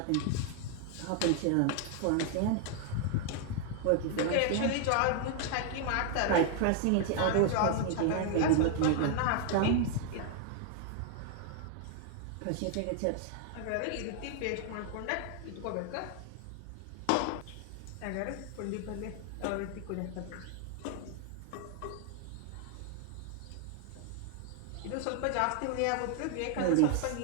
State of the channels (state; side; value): different; both; correlation 0.00